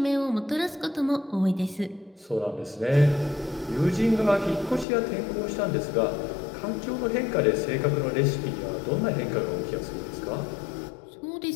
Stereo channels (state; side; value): drops out; right; at 4.9 s